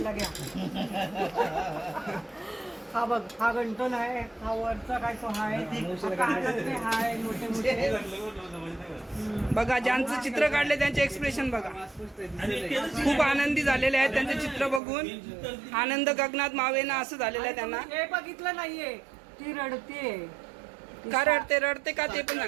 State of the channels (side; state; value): left; drops out; at 14.8 s